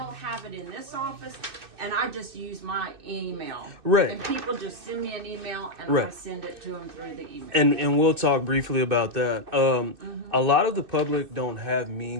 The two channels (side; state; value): left; late; 2.6 ms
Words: have it in this office, and I just use my email. Right. And people just send me an email, and I Right. send it to them through the email. and we'll talk briefly about that. A lot of the public don't have